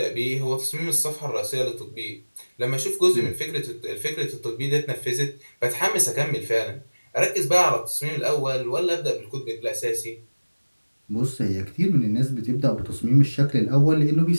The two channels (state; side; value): inverted; both; correlation -1.00